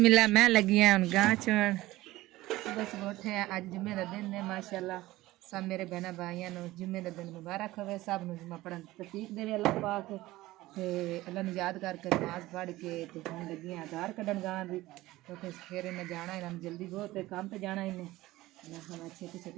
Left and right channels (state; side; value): quieter; left; 17.7 dB